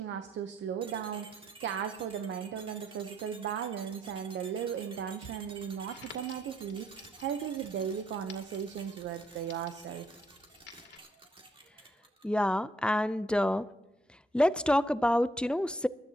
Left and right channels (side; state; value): both; normal; correlation 0.71